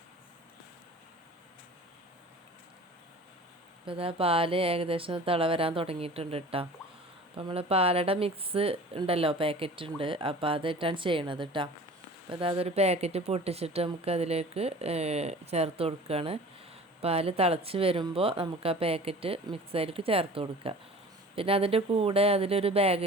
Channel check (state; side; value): normal; both; correlation 0.42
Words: ഇപ്പോൾ ഇതാ പാല് ഏകദേശം തിള വരാൻ തുടങ്ങിയിട്ടുണ്ട് കേട്ടോ. അപ്പോൾ നമ്മൾ പാലട മിക്സ് ഉണ്ടല്ലോ, പാക്കറ്റ് ഉണ്ട്, അപ്പോൾ അതിട്ടാണ് ചെയ്യണത് കേട്ടോ. അപ്പോൾ അതൊരു പാക്കറ്റ് പൊട്ടിച്ചിട്ട് നമുക്ക് അതിലേക്ക് ചേർത്ത് കൊടുക്കുകയാണ്. പാല് തിളച്ച് വരുമ്പോൾ നമുക്ക് ആ പാക്കറ്റ് മിക്സിലേക്ക് ചേർത്ത് കൊടുക്കുക. പിന്നെ അതിൻ്റെ കൂടെ അതിലൊരു